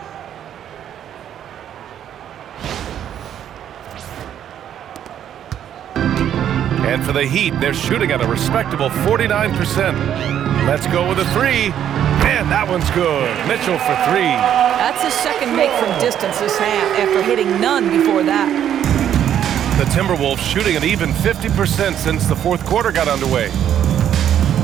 And for the Heat, they're shooting at a respectable 49%. Let's go with a three. And that one's good. Mitchell for three. That's his second make from distance this half after hitting none before that. The Timberwolves shooting an even 50% since the fourth quarter got underway.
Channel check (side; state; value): left; quieter; 10.0 dB